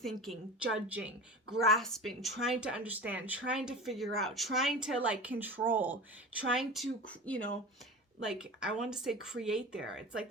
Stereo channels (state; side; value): normal; both; correlation 0.32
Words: judging, grasping, trying to understand, trying to figure out, trying to control, trying to, I want to say create there. It's like